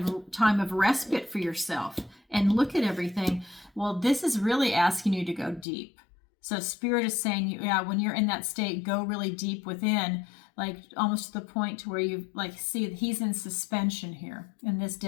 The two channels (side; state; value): right; drops out; at 5.7 s